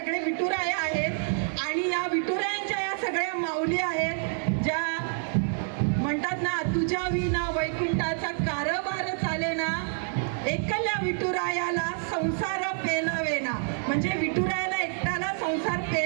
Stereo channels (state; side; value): silent; left; 57 dB below the other